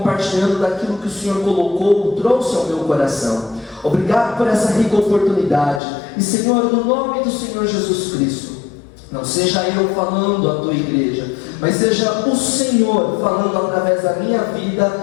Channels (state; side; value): drops out; right; at 5.8 s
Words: daquilo que o Senhor colocou, trouxe ao meu coração. Obrigado por essa rica oportunidade. E Senhor, no nome do Senhor Jesus Cristo, não seja eu falando à tua igreja, mas seja o Senhor falando através da minha